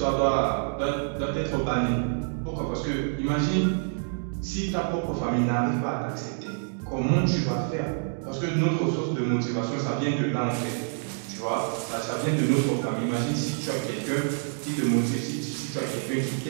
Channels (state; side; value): silent; left; digital silence